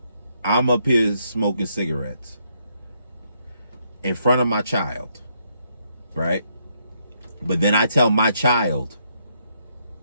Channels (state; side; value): inverted; both; correlation -0.74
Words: I'm up here smoking cigarettes in front of my child, right? But then I tell my child,